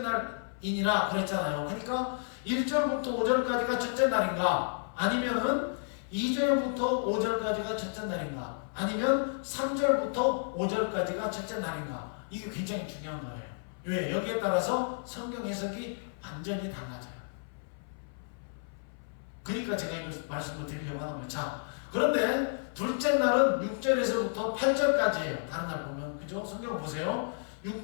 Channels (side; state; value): right; silent; 57 dB below the other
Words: 그랬잖아요. 그러니까 1절부터 5절까지가 첫째 날인가? 아니면은 2절부터 5절까지가 첫째 날인가? 아니면 3절부터 5절까지가 첫째 날인가? 이게 굉장히 중요한 거예요. 왜? 여기에 따라서 성경 해석이 완전히 달라져요. 그러니까 제가 이거 말씀을 드리려고 하는 거예요. 자, 그런데 둘째 날은 6절에서부터 8절까지예요. 다른 날 보면. 그죠? 성경 보세요.